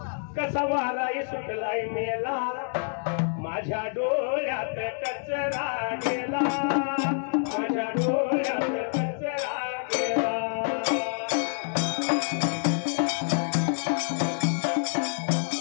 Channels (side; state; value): right; silent; digital silence